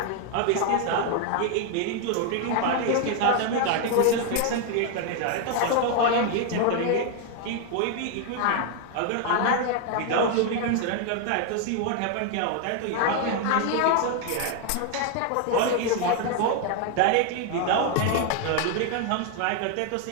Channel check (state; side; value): different; both; correlation 0.00